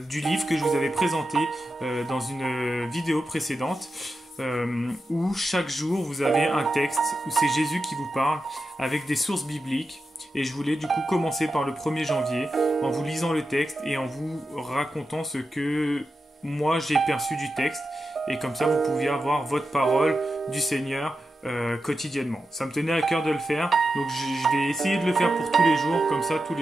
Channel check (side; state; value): both; normal; correlation 0.90